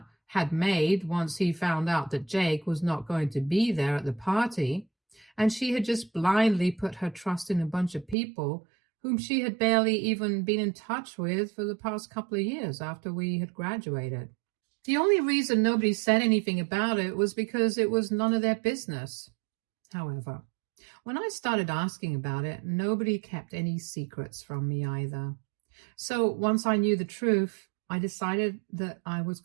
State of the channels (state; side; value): drops out; left; at 8.2 s